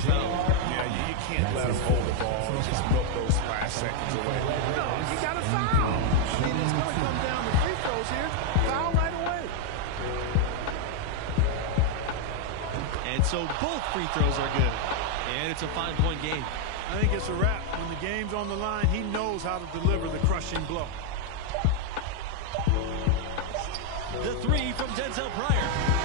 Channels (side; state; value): both; different; correlation 0.00